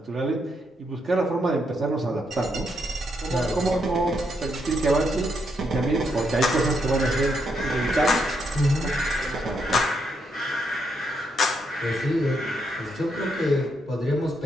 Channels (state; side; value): normal; both; correlation 0.78